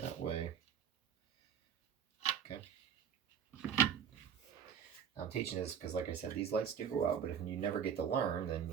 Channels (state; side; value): quieter; left; 8.2 dB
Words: That way. Okay. I'm teaching this because, like I said, these lights do go out, but if you never get to learn, then